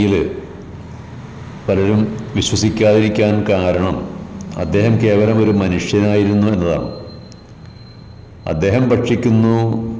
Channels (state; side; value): identical; both; correlation 1.00